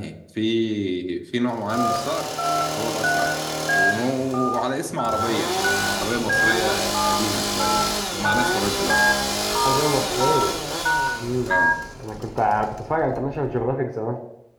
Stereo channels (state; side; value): identical; both; correlation 1.00